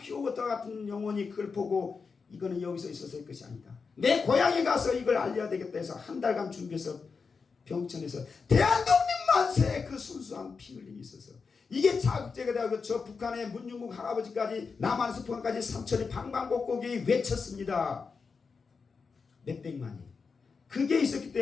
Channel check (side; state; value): right; quieter; 5.1 dB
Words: 같은 영혼이 그걸 보고 이거는 여기서 있어서의 것이 아니다. 내 고향에 가서 이걸 알려야 되겠다 해서 한 달간 준비해서 병천에서 대한독립만세! 그 순수한 피 흘림이 있어서 이게 자극제가 되고 저 북한의 문중국 할아버지까지 남한에서 북한까지 삼천리 방방곡곡이 외쳤습니다. 몇백만이. 그게 있었기